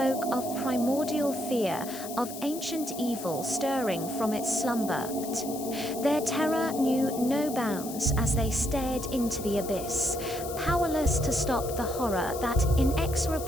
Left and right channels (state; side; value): noise; left; hiss, 11 dB below the sound